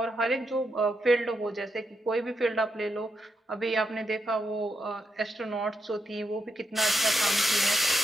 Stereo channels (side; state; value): both; normal; correlation 0.82